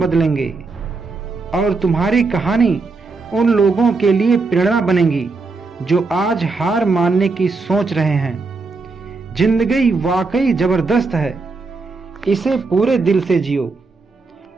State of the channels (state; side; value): quieter; left; 4.0 dB